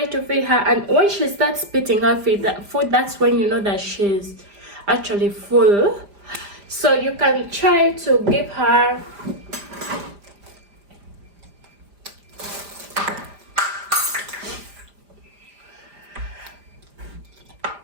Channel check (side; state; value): left; late; 5.0 ms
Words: to feed her, and when she starts spitting out food, that's when you know that she's actually full. So you can try to give her